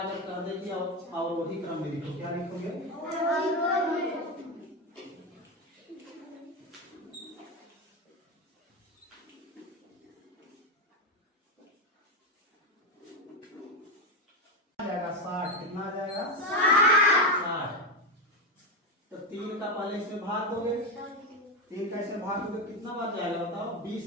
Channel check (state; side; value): normal; both; correlation 0.11